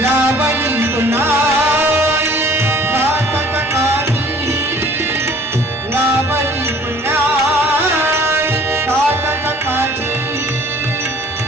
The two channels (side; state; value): both; normal; correlation 0.53